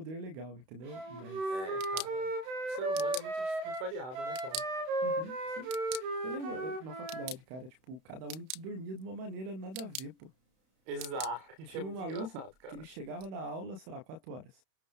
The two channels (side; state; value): left; late; 31 ms